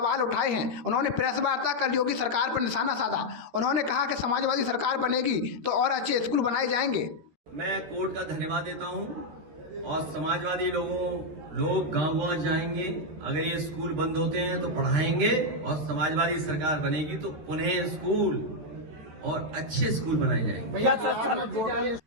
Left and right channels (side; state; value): left; late; 13 ms